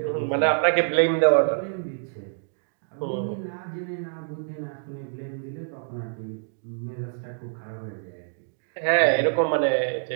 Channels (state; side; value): silent; left; digital silence